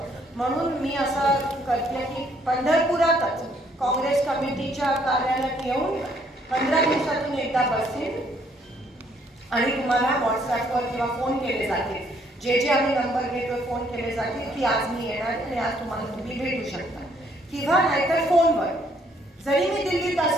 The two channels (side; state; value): both; normal; correlation 0.67